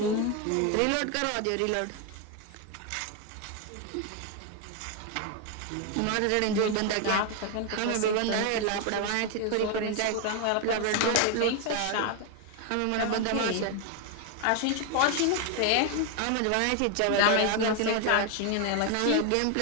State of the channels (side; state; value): both; different; correlation 0.01